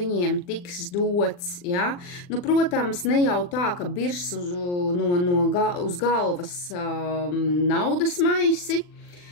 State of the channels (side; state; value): right; late; 40 ms